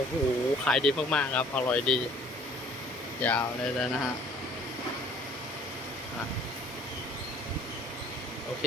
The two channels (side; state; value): both; normal; correlation 0.54